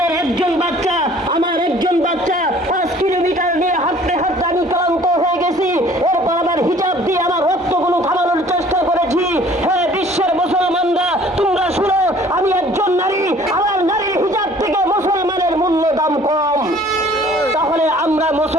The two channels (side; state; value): both; normal; correlation 0.53